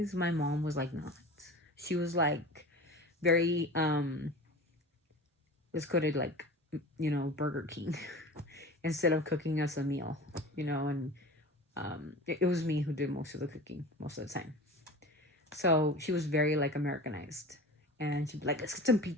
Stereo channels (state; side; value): normal; both; correlation 0.35